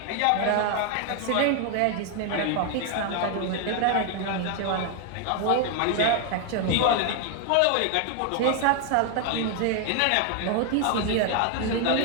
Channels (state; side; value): different; both; correlation 0.00